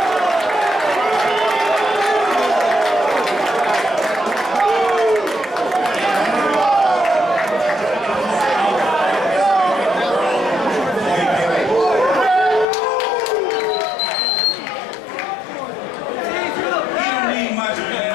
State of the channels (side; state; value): right; drops out; at 12.7 s